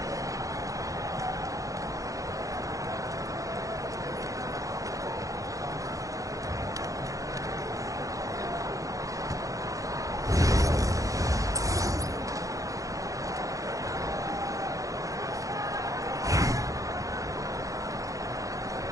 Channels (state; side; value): late; left; 0.16 ms